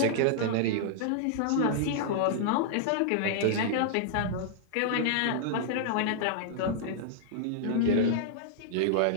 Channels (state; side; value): different; both; correlation -0.01